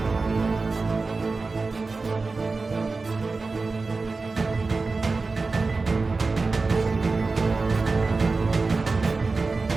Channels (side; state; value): left; quieter; 3.9 dB